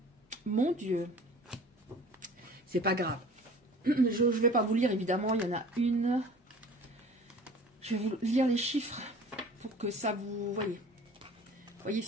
Mon Dieu. C'est pas grave. Je ne vais pas vous lire, évidemment. Il y en a une. Je vais vous lire les chiffres pour que ça vous... Voyez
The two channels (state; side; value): normal; both; correlation 0.45